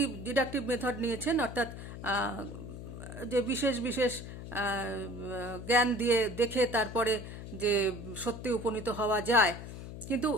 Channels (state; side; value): noise; left; hum, 10 dB below the sound